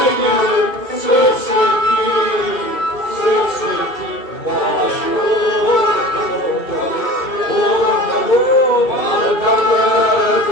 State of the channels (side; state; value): right; late; 2.5 ms